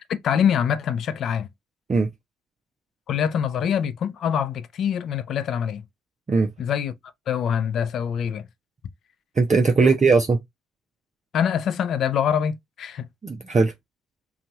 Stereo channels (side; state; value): both; normal; correlation 0.71